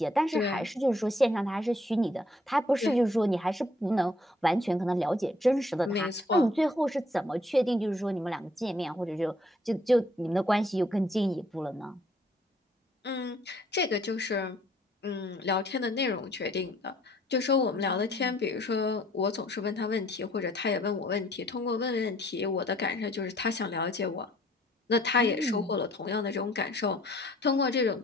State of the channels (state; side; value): normal; both; correlation 0.62